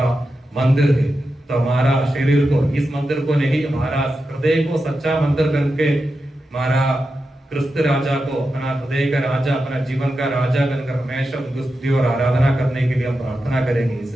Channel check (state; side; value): normal; both; correlation 0.90